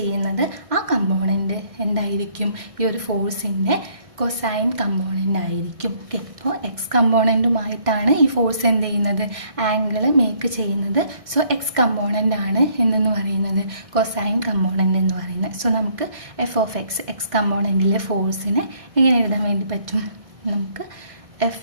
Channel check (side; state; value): left; late; 1.6 ms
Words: ആ കമ്പോണൻറ്റ് എന്തായിരിക്കും? ഈ ഒരു ഫോഴ്സിൻ്റെ കൊസൈൻ കമ്പോണൻ്റ് ആയിരിക്കും. ഓക്കെ, അപ്പോൾ എക്സ് കമ്പോണൻറ്റുമായിട്ടാണ് ഈ ഫോഴ്സ് എന്ത് ചെയ്യുന്നത്? ആംഗിൾ മേക്ക് ചെയ്യുന്നത്. സോ എക്സ് കമ്പോണൻ്റ് ആണ് എന്നെന്ന് പറയുന്നത് കൊസൈൻ കമ്പോണൻ്റ് എന്ന് പറയുന്നത്. സോ നമുക്ക് F(x) എക്സ് കമ്പോണൻറ്റിലെ ഫോഴ്സിനെ എങ്ങനെ എഴുതാൻ വേണ്ടി പറ്റും? നമുക്ക്